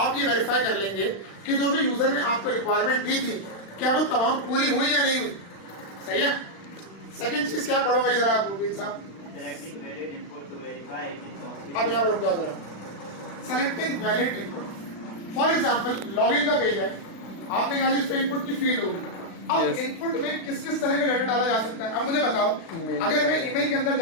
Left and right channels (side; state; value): right; late; 36 ms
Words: ये वेरीफाई कर लेंगे कि जो भी यूजर ने आपको रिक्वायरमेंट दी थी क्या वो तमाम पूरी हुई या नहीं हुई। सही है। सेकंड चीज क्या पढ़ो भाई जरा आप मुबीन साहब, अब यहाँ रुक जाओ जरा, selecting valid input. For example login का पेज है, आपने कहा इस पे इनपुट की फील्ड होगी, अब इनपुट में किस किस तरह का डाटा डाला जा सकता है। अब मुझे बताओ अगर मैं ईमेल के अंदर